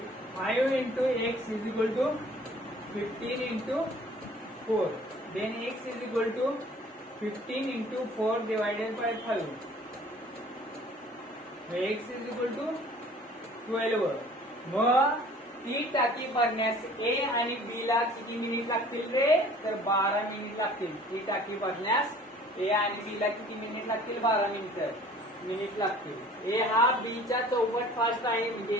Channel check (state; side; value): normal; both; correlation 0.50